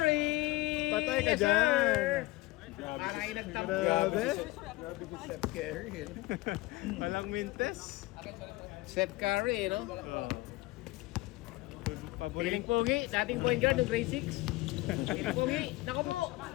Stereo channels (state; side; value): quieter; right; 19.9 dB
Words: Patay ka Yes, dyan. sir. Para kayo nagtampo. Grabe. Grabe si Steph Curry. Walang mintes. Steph Curry, no? Oh. Piling Paboring. pogi. Dating point guard ng grade 6. Piling pogi. Nako po.